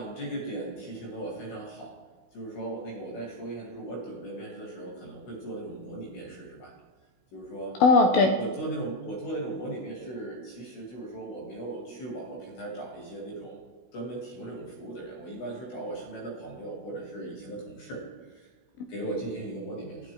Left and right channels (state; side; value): late; right; 16 ms